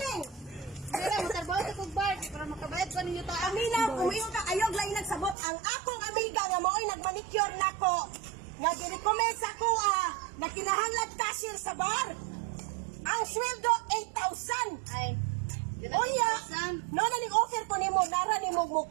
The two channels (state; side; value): drops out; left; at 5.4 s